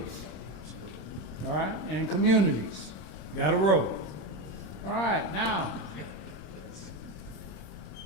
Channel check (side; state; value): right; late; 26 ms